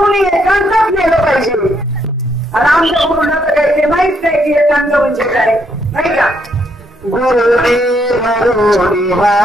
एकांतात नेलं पाहिजे. आणि आमच्या गुरुला तर काही ते माहित नाही की एकांत म्हणजे काय नाही का. गुरुने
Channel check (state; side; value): normal; both; correlation 0.74